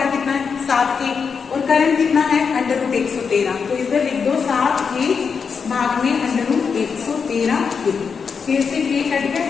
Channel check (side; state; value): right; quieter; 5.9 dB